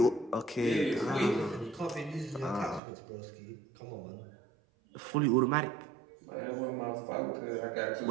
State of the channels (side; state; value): left; drops out; at 2.8 s